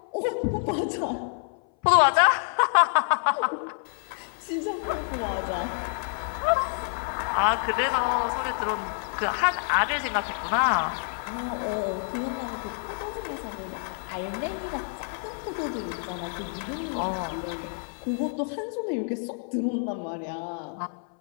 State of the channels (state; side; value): silent; right; 57 dB below the other